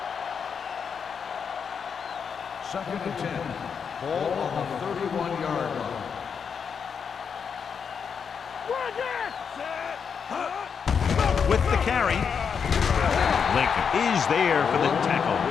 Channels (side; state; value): right; quieter; 6.6 dB